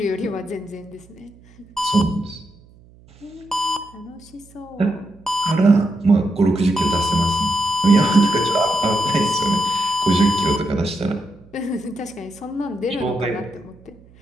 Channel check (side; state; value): right; noise; hum, 26 dB below the sound